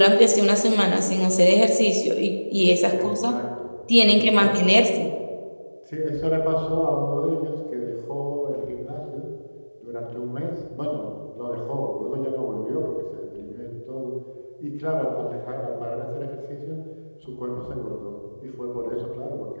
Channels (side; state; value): both; inverted; correlation -1.00